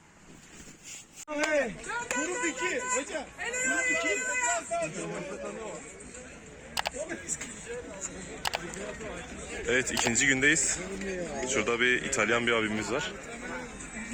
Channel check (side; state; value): both; identical; correlation 1.00